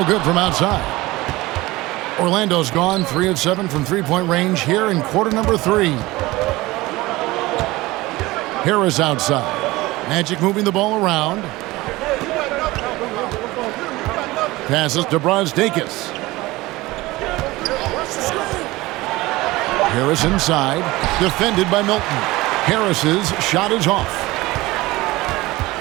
good from outside. Orlando's gone 3 of 7 from three-point range here in quarter number 3. Harris outside. Magic moving the ball around. Passes to Brazdeikis. Harris inside. Defended by Milton. Harris's shot is off.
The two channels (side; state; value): left; quieter; 19.8 dB